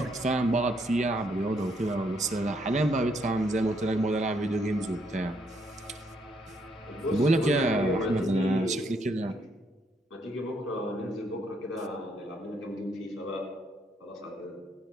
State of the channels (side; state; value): both; normal; correlation 0.72